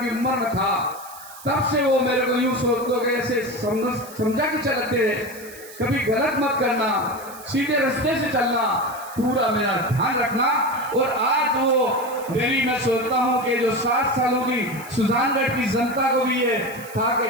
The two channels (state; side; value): noise; right; hiss, 18 dB below the sound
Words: उम्र में था, तब से वो मेरे को यूं सोचते के ऐसे समझा के चलते रहे, कभी गलत मत करना, सीधे रास्ते से चलना, पूरा मेरा ध्यान रखना। और आज वो मेरी, मैं सोचता हूँ कि जो 60 सालों की सुजानगढ़ की जनता को भी ये था कि